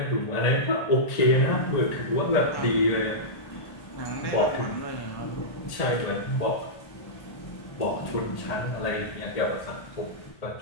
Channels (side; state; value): right; late; 1.8 ms